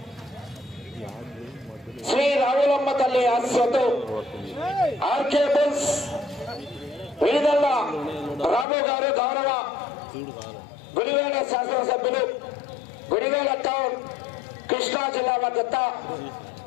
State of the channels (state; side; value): drops out; right; at 8.7 s